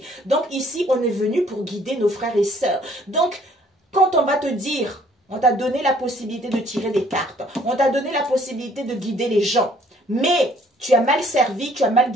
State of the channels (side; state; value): both; normal; correlation 0.60